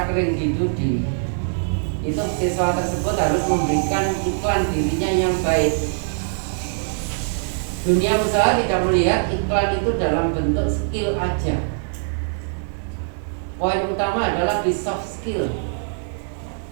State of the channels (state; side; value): silent; left; digital silence